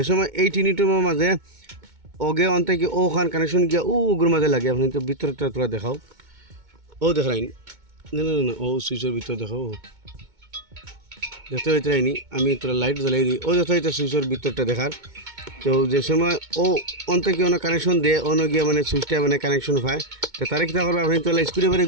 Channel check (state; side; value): late; left; 2.2 ms